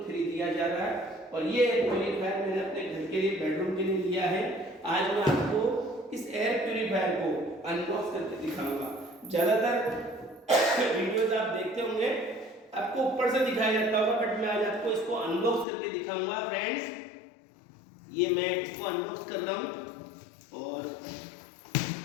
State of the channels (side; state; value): right; drops out; at 15.7 s